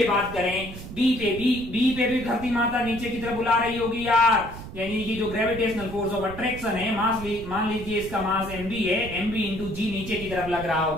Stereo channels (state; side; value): noise; right; rumble, 12 dB below the sound